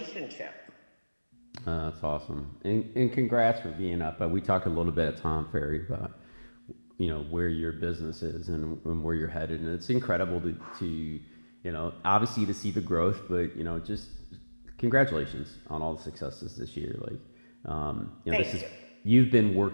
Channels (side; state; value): both; inverted; correlation -1.00